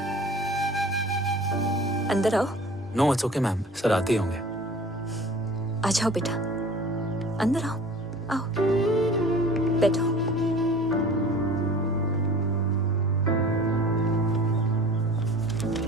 अंदर आओ। No it's okay ma'am, sir आते ही होंगे। आ जाओ बेटा, अंदर आओ। आओ, बैठो।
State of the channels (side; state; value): both; normal; correlation 0.44